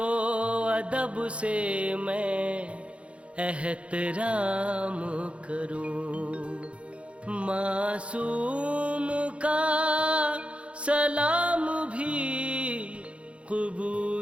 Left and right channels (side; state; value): left; late; 0.060 ms